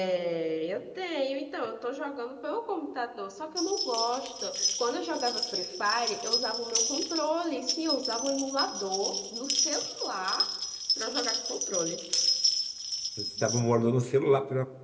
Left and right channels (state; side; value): identical; both; correlation 1.00